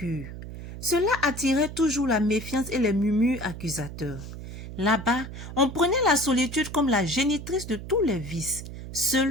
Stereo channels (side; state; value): right; noise; hum, 11 dB below the sound